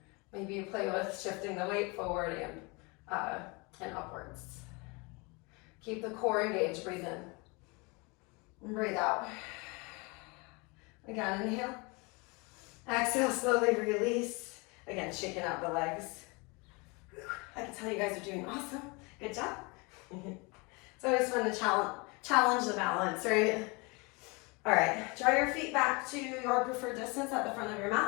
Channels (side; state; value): right; quieter; 28.3 dB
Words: Maybe you play with shifting the weight forward and upwards. Keep the core engaged. Breathe in. And breathe out. Again, inhale. Exhale, slowly release. Again, shaking out the legs. I can tell you guys are doing awesome. Good job. It's always fun to challenge the balance, right? All right, draw your feet back to your preferred distance at the front of your